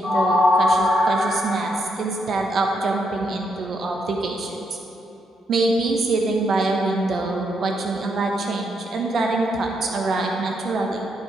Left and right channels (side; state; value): both; normal; correlation 0.78